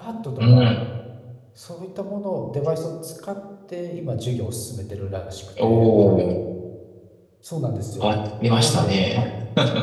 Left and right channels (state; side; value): identical; both; correlation 1.00